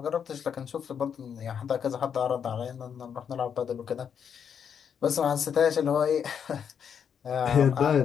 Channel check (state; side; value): quieter; right; 7.7 dB